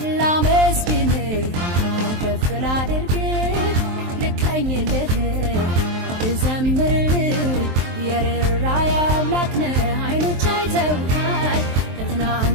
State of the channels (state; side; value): late; left; 23 ms